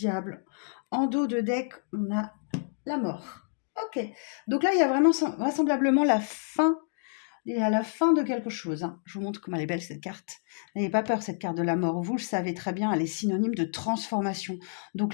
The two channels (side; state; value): right; silent; digital silence